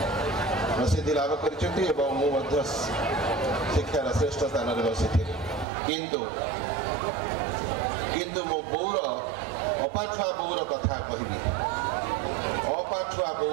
प्रसिद्धि लाभ कर शिक्षार श्रेष्ठ स्थान में बसी किंतु मो बौर अपाठुआ बौर कथा कहबी अपाठुआ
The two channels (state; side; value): drops out; left; at 5.7 s